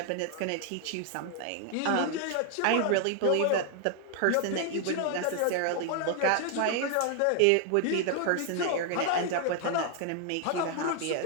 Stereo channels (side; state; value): both; different; correlation 0.00